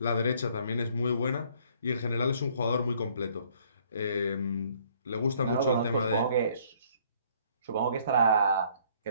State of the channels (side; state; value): both; inverted; correlation -0.62